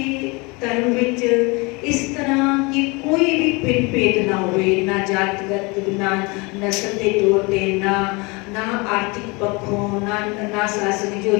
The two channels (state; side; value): quieter; right; 27.4 dB